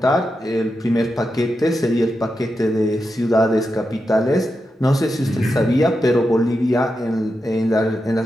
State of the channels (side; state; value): both; normal; correlation 0.88